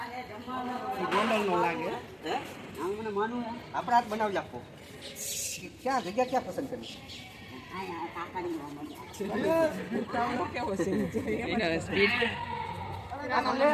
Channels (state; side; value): identical; both; correlation 1.00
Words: ગોંડલનો લાગે. હે? મને માનું આપણે હાથ બનાવી આપો. ક્યાં જગ્યા ક્યાં પસંદ કરી?